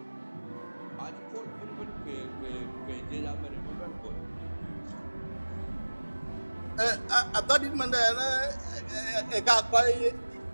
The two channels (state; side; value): inverted; both; correlation -1.00